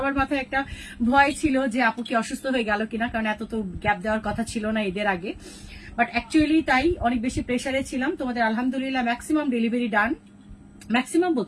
মাথায় একটা ভয় ছিল যে আপু কি অসুস্থ হয়ে গেল কিনা, কারণ এত তো গ্যাপ দেওয়ার কথা ছিল না ঈদের আগে। বাট অ্যাকচুয়ালি তাই, অনেক বেশি প্রেশারে ছিলাম। তোমাদের আলহামদুলিল্লাহ ম্যাক্সিমাম ডেলিভারি ডান, ম্যাক্সিমাম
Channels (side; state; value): both; identical; correlation 1.00